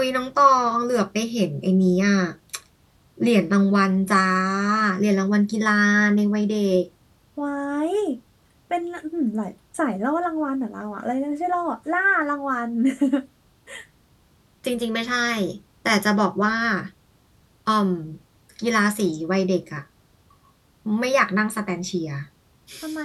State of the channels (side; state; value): both; identical; correlation 1.00